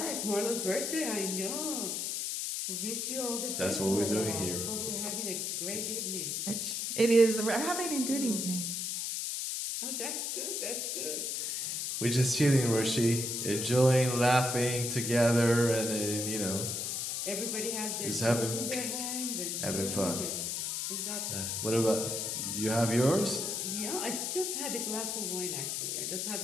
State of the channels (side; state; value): left; noise; hiss, 2 dB below the sound